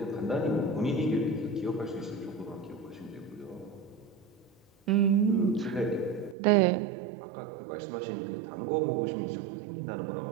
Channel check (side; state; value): left; drops out; at 6.4 s